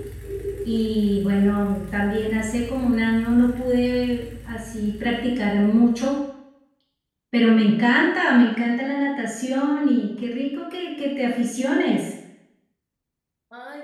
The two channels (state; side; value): identical; both; correlation 1.00